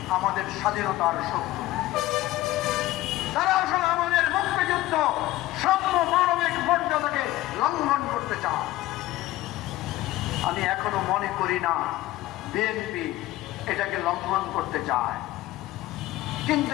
আমাদের স্বাধীনতার শত্রু। তারা আসলে আমাদের মুক্তিযুদ্ধ সাম্য মানবিক মর্যাদাকে লঙ্ঘন করতে চায়। আমি এখনো মনে করি না বিএনপি এটাকে লঙ্ঘন করতে চায়, কিন্তু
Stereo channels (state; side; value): quieter; right; 16.7 dB